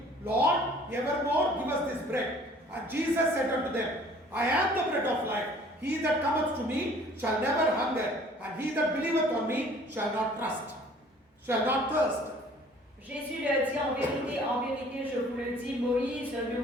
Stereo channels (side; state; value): both; normal; correlation 0.53